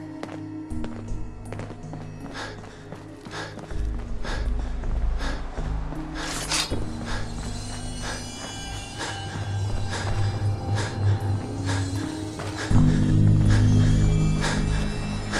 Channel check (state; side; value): identical; both; correlation 1.00